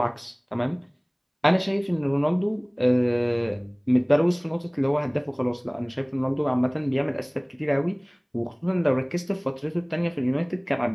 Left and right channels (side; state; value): both; identical; correlation 1.00